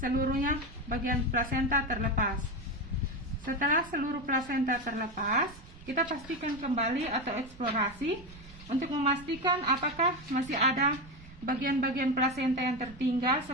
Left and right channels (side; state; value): right; noise; rumble, 19 dB below the sound